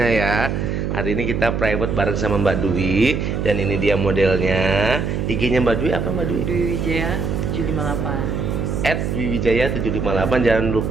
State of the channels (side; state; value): right; noise; hum, 1 dB below the sound